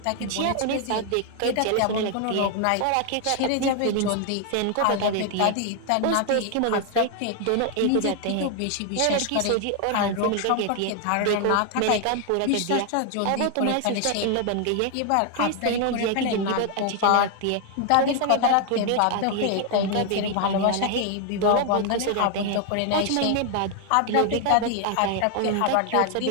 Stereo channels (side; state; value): both; different; correlation 0.00